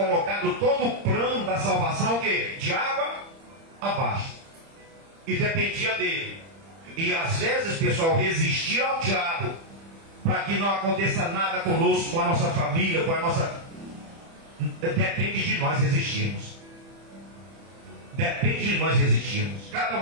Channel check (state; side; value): late; left; 30 ms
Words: todo o plano da salvação, o quê? De água abaixo. E dependia dele. E às vezes, pessoal, resistir ao diabo para que não aconteça nada conosco, com a nossa família, com a nossa... Depende de nós resistirmos. Depende de nós resistirmos. Cada